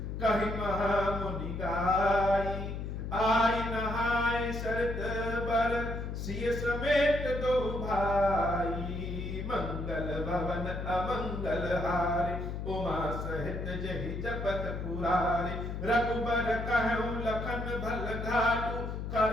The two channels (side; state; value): left; noise; hum, 5 dB below the sound